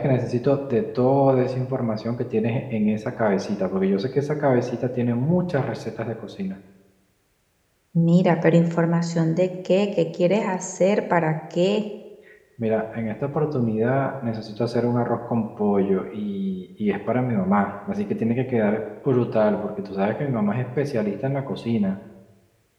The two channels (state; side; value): identical; both; correlation 1.00